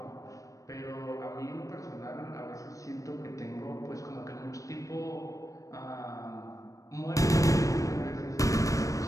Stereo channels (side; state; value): right; late; 0.16 ms